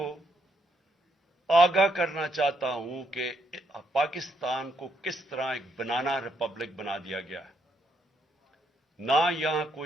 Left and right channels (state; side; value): normal; both; correlation 0.75